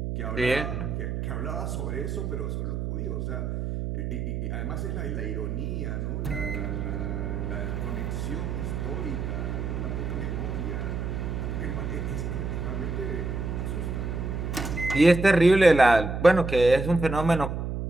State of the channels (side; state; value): right; noise; hum, 3 dB below the sound